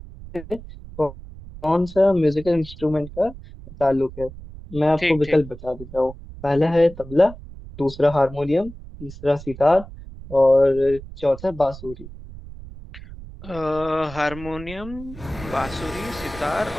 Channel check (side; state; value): right; noise; rumble, 15 dB below the sound